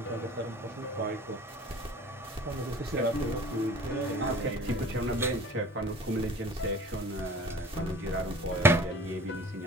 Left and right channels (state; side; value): normal; both; correlation 0.46